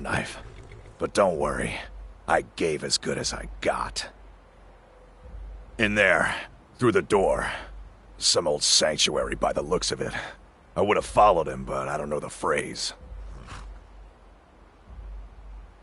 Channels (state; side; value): identical; both; correlation 1.00